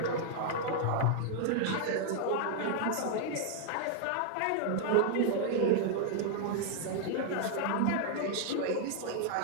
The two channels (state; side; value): different; both; correlation 0.00